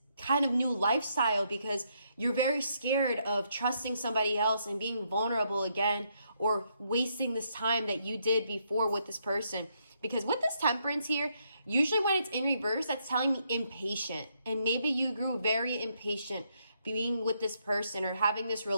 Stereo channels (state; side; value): inverted; both; correlation -0.75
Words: kind of new lifestyle because you're very scared of trusting somebody else and being vulnerable again, or wasting this time that you did before with this person. Because with this Temperance here, usually when it's in reverse, that's telling me impatient. And maybe you grew very impatient being with this person or having this